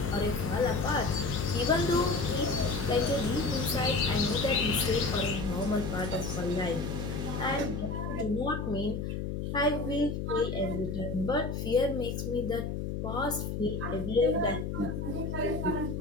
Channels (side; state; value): left; noise; hum, 3 dB below the sound